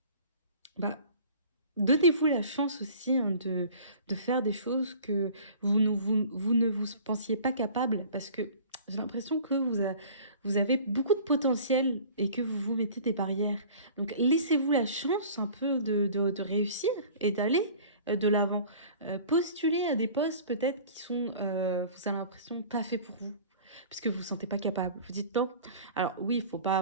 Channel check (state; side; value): inverted; both; correlation -0.45